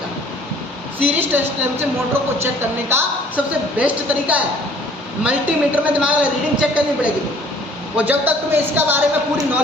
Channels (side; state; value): both; normal; correlation 0.55